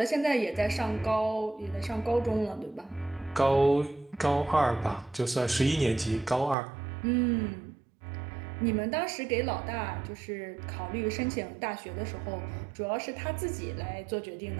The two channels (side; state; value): left; drops out; at 6.6 s